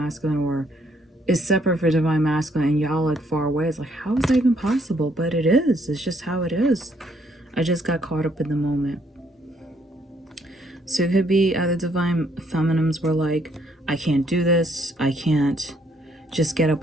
or is separate for divine masculine and y'all like far away. It's like, how is that even possible? But it is. It's just how it is. I just got caught up in the moment. So it could be either divine feminines were like, I can't do this. I can't just get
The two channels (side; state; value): both; normal; correlation 0.69